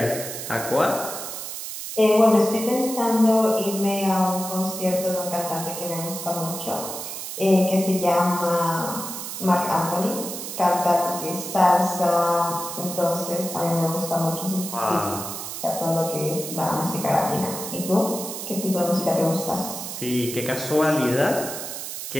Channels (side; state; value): right; noise; hiss, 7 dB below the sound